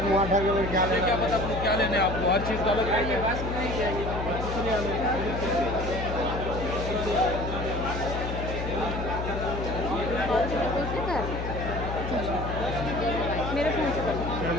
मुँह उठा के क्या लेना, क्या पता आपको क्या लेने, आपको हर चीज़ डालोगे। मेरे फोन से कर।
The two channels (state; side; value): noise; left; hum, 4 dB below the sound